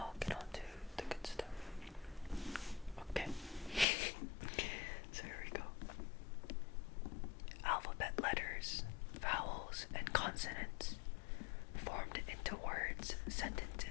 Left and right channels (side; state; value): right; drops out; at 3.9 s